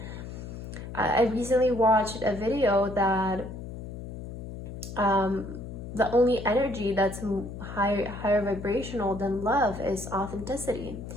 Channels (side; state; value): left; noise; hum, 10 dB below the sound